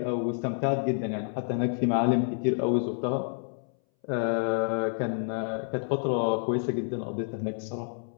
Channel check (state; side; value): silent; right; 59 dB below the other